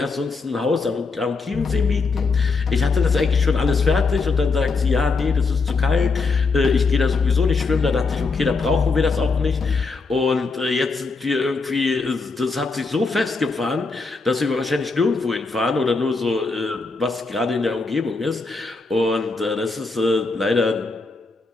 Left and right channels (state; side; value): quieter; right; 4.1 dB